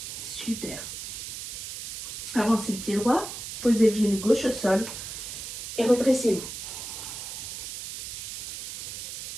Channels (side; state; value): right; noise; hiss, 8 dB below the sound